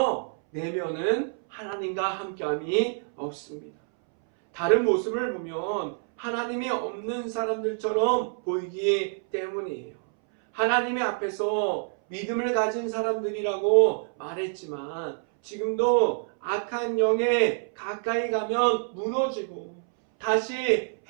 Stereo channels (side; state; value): left; silent; 60 dB below the other